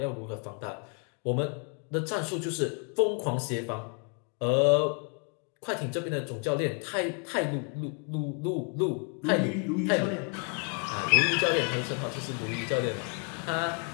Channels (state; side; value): quieter; right; 38.5 dB